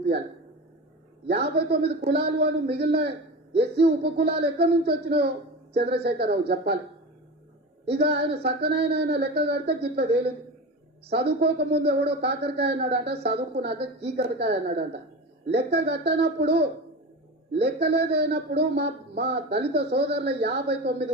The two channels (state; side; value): normal; both; correlation 0.28